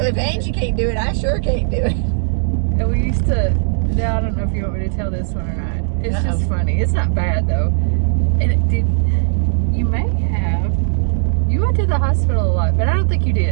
Angie can't do it, I sure can't do it. And we used to, now I don't know if you want me to tell this one or not. It's just funny. It's not bad though. And you went to the hospital a lot, but I don't think you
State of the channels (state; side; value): silent; left; digital silence